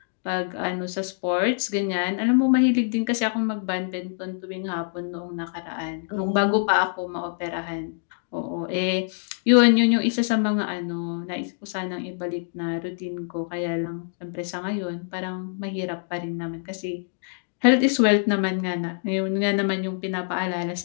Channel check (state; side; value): silent; right; digital silence